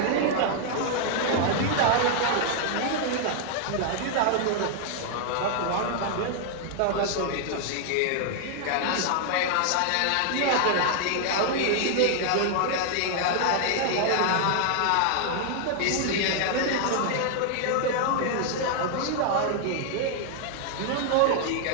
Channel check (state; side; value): different; both; correlation 0.00